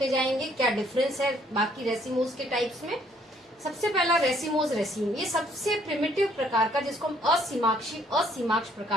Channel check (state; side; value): normal; both; correlation 0.65